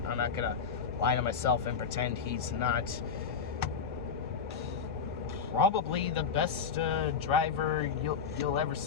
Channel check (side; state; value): right; quieter; 6.2 dB